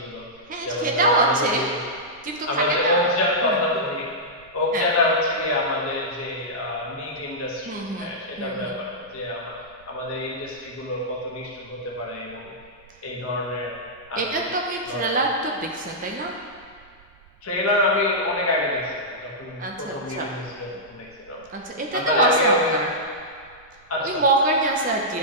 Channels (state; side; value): noise; right; rumble, 28 dB below the sound